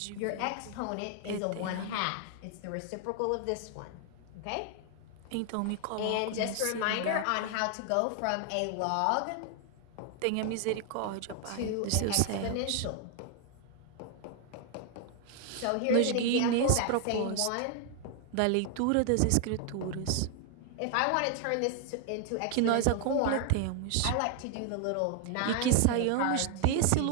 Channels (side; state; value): both; different; correlation 0.00